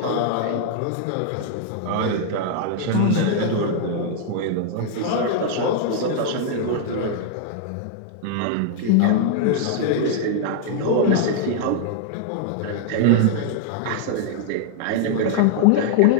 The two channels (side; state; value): both; different; correlation -0.01